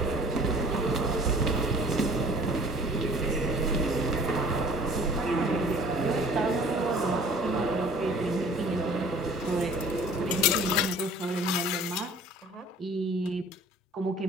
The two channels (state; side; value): normal; both; correlation 0.50